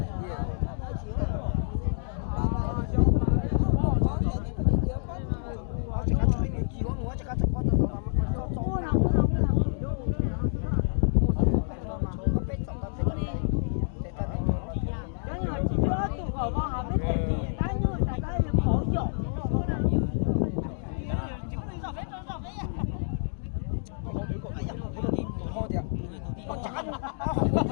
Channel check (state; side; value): silent; right; digital silence